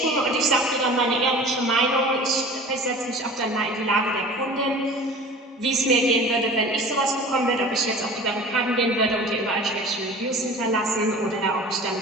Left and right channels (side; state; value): both; normal; correlation 0.41